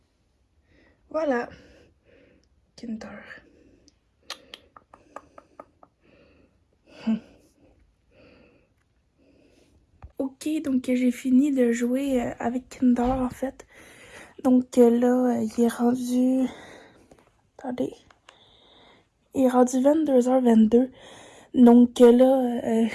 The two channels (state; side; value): identical; both; correlation 1.00